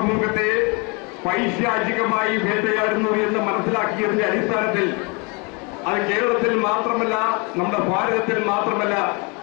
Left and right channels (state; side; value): quieter; right; 31.2 dB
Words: പൈശാചികമായി വേട്ടയാടുന്നു എന്ന് മനസ്സിലാക്കിയതിന്റെ അടിസ്ഥാനത്തിൽ അത് കേരളത്തിൽ മാത്രമല്ല, നമ്മുടെ ഭാരതത്തിൽ മാത്രമല്ല,